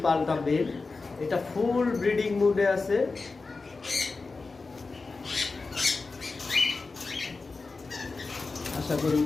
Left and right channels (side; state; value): right; quieter; 4.0 dB